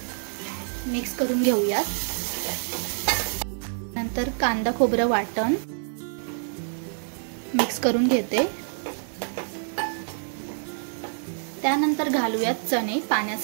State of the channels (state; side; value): silent; left; digital silence